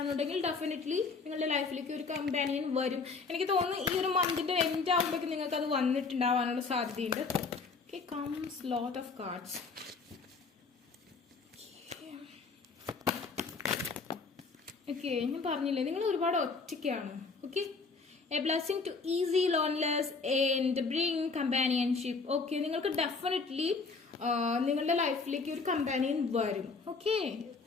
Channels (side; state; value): right; quieter; 4.4 dB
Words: ഡെഫിനറ്റ്ലി നിങ്ങളുടെ ലൈഫിലേക്ക് ഒരു കമ്പാനിയൻ വരും. എനിക്ക് തോന്നുന്നു ഈ ഒരു മന്തിന്റെ എൻഡ് ആകുമ്പോഴേക്കും നിങ്ങൾക്ക് അത് വന്നിട്ടുണ്ടാവാനുള്ള സാധ്യതയുണ്ട്. Okay, comes lot of cards. Okay, ഞാൻ പറഞ്ഞില്ലേ നിങ്ങൾ ഒരുപാട് ഒറ്റയ്ക്കാണ്. Okay, a blessing to ease loneliness and bring companionship. Okay, നിങ്ങൾക്ക് ഡെഫിനറ്റ്ലി നിങ്ങളുടെ ലൈഫിലേക്ക് ഒരു കമ്പാനിയൻ വരും. ഓക്കെ,